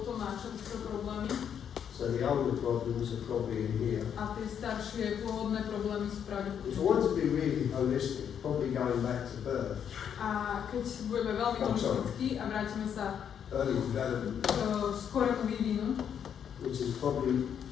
má čerstvé problémy so the older problems are probably in here. a tie staršie pôvodné problémy sú If I pravdepodobne. want to be really holistic, probably going back to birth, A keď budeme veľmi holistickí a vrátime sa early development, k skorému vývinu, which is probably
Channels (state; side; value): quieter; right; 8.4 dB